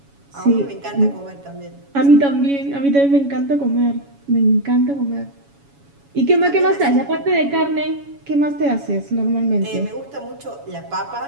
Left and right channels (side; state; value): left; late; 7.2 ms